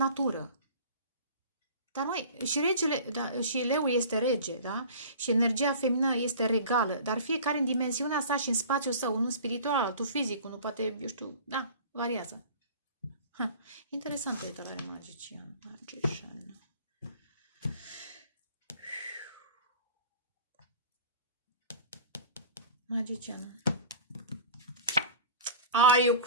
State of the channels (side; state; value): both; inverted; correlation -0.40